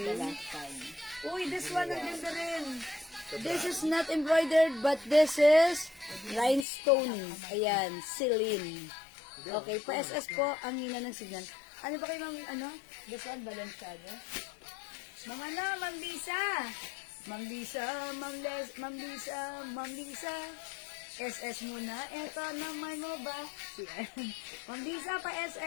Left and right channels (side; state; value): right; drops out; at 6.7 s